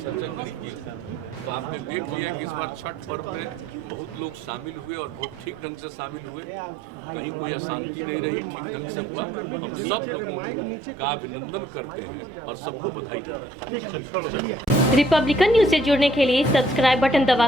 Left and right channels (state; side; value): normal; both; correlation 0.63